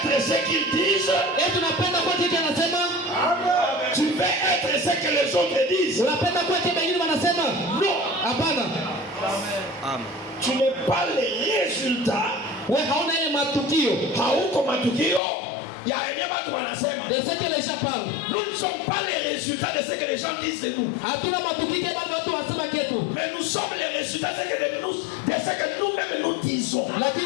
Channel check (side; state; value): right; drops out; at 15.2 s